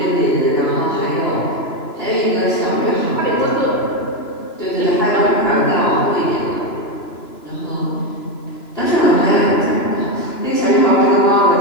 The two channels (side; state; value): right; late; 2.9 ms